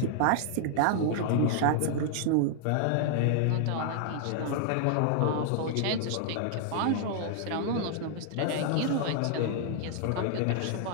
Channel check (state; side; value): different; both; correlation -0.01